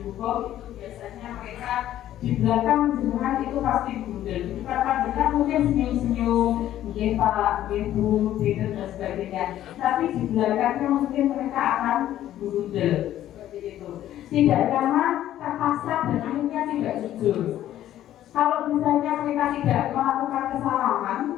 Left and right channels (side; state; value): right; quieter; 12.5 dB